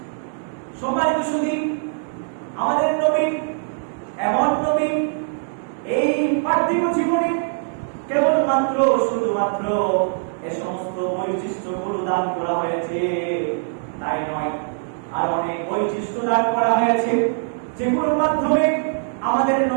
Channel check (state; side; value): silent; left; digital silence